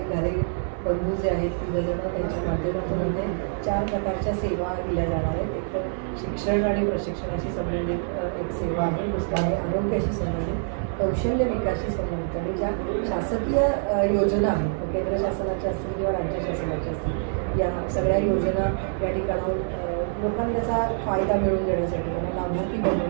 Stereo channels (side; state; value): left; silent; 61 dB below the other